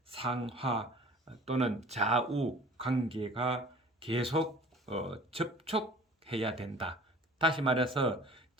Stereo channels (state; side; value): normal; both; correlation 0.46